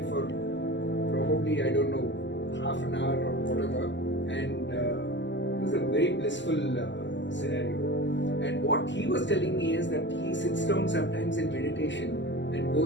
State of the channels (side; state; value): right; late; 0.53 ms